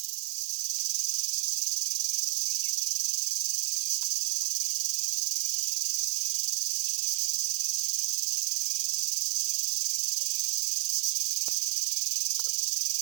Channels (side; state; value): left; silent; digital silence